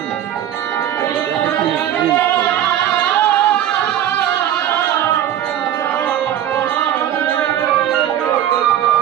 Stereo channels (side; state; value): left; quieter; 11.0 dB